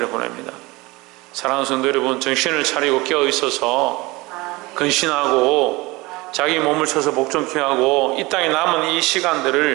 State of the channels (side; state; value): left; quieter; 22.4 dB